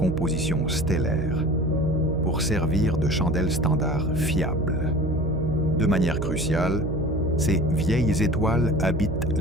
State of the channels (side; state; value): right; noise; hum, 3 dB below the sound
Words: stellaires pour servir de chandelle standard fiable. De manière cruciale, ces vieilles étoiles habitent